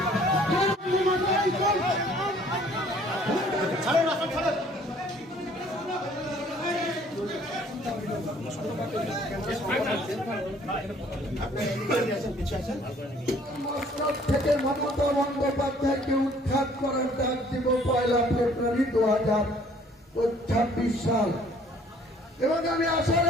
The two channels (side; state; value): both; normal; correlation 0.58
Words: থেকে মমতা বন্দ্যোপাধ্যায়কে উৎখাত করার ডাক দিব 1 ফেব্রুয়ারি 2026 সাল। এবং আমি আশা